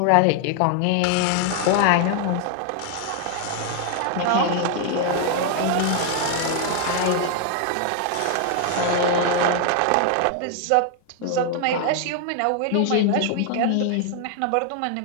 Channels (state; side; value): different; both; correlation 0.00